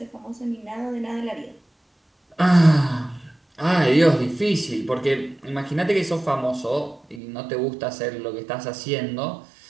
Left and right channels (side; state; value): left; drops out; at 7.2 s